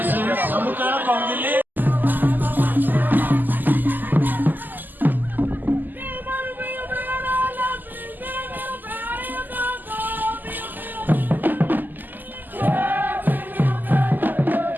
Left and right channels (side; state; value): left; late; 0.087 ms